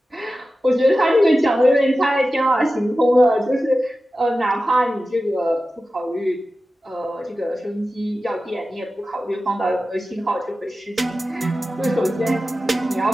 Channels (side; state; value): both; normal; correlation 0.94